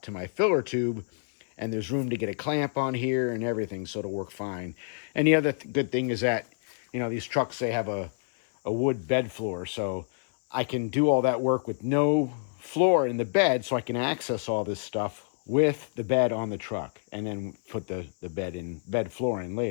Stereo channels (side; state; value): right; silent; digital silence